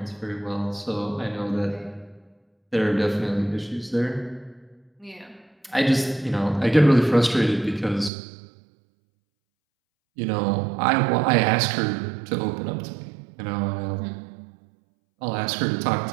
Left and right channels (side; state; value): left; drops out; at 8.1 s